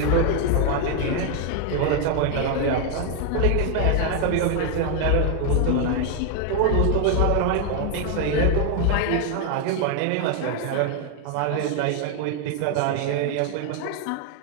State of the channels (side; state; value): both; different; correlation 0.01